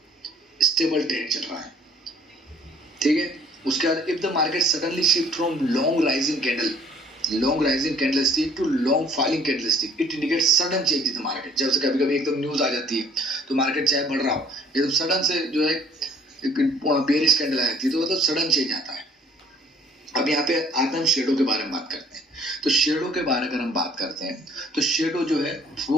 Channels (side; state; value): both; normal; correlation 0.57